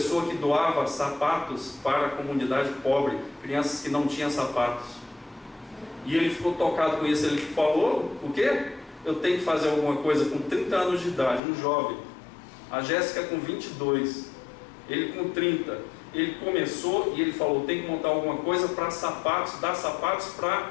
que doava sapatos para a comunidade pobre, crianças que não tinham sapatos. E ele ficou tocado com isso. Ele falou, o quê? Eu tenho que fazer alguma coisa com 30 anos de idade, um jovem. A Jéssica com 22, ele com 30. Ele começou e ele falou, tem que montar alguma coisa para sapatos, dar sapatos para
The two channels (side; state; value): right; drops out; at 11.4 s